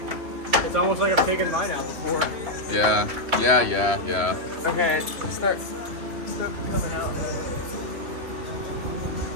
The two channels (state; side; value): late; left; 3.3 ms